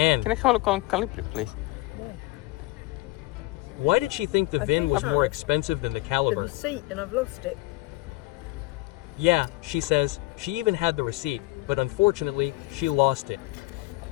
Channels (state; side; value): quieter; right; 20.2 dB